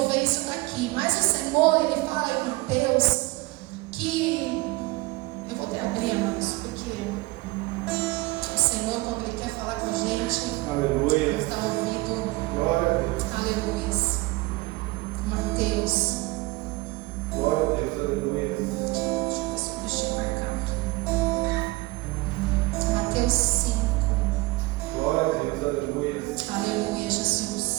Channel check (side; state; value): left; quieter; 21.9 dB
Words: isso daqui. Mas o Senhor, Ele fala em Mateus que... eu vou até abrir, irmãos, porque o Senhor, quando Ele quer falar com a gente, aleluia, nos dá ouvido. Glória a Deus. Aleluia. Mateus. Glória a Deus, aleluia. Deixa eu marcar aqui. Mateus 5. Glória a Deus, aleluia. Aleluia,